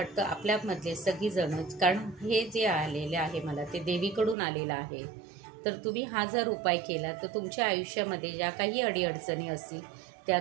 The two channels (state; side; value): drops out; left; at 4.4 s